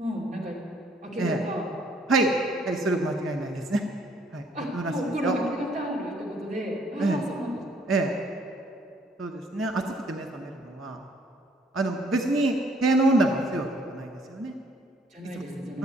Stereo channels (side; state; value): both; normal; correlation 0.63